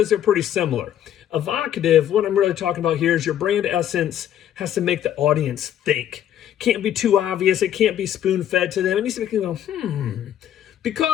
they're pretty similar. Evocative, what I'm really talking about here is your brand essence has to make the audience think. Can't be too obvious. It can't be spoon-fed to them. It needs to make them go,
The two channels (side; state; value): right; quieter; 10.7 dB